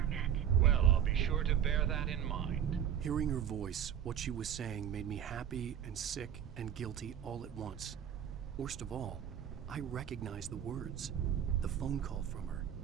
met. Well, I'll be sure to bear that in mind. Hearing her voice, what she was saying made me happy and sick and guilty all at once. Worst of all, I recognized the words. The phone call from her.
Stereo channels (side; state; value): left; quieter; 9.4 dB